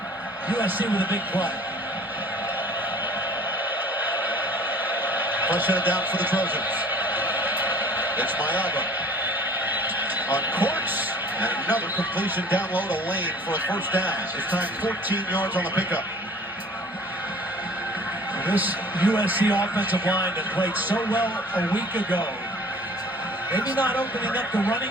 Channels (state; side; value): normal; both; correlation 0.49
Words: USC with a big play. First headed down for the Trojans. It's Mayava on course, and another completion down low to Lane for a first down. This time 14 yards on the pickup. This USC offensive line that played so well a week ago, maybe not opening up the running